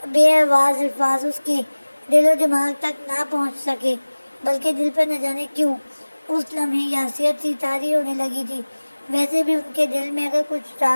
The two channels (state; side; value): inverted; both; correlation -1.00